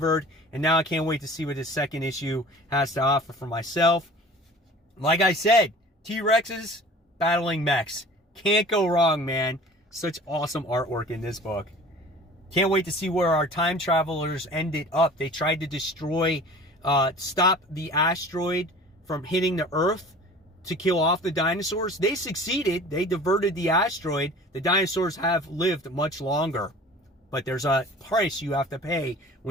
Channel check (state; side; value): normal; both; correlation 0.44